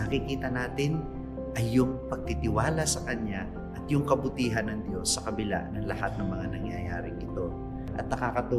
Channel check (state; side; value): identical; both; correlation 1.00